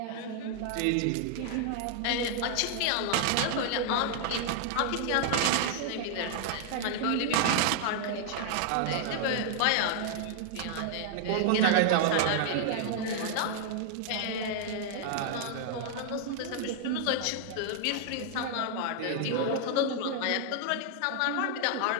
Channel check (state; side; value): different; both; correlation 0.00